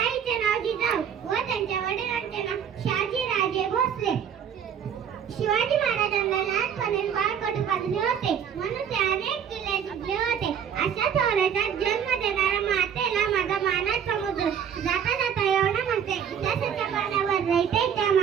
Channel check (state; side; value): quieter; left; 8.2 dB